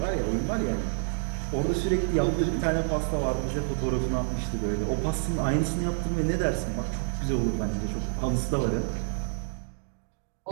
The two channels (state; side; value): silent; left; digital silence